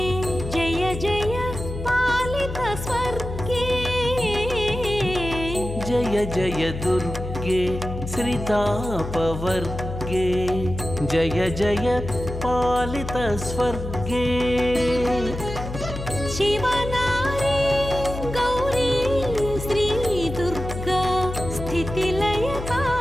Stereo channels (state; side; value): noise; left; hum, 7 dB below the sound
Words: జయ జయ పాలిత స్వర్గే. జయ జయ దుర్గే శ్రితాపవర్గే జయ జయ పాలిత స్వర్గే. శివనారీ గౌరీ శ్రీ దుర్గా